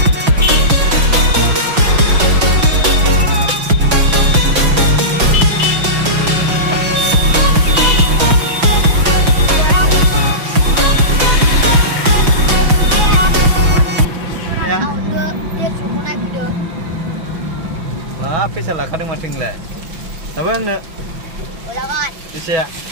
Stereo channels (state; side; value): late; left; 5.9 ms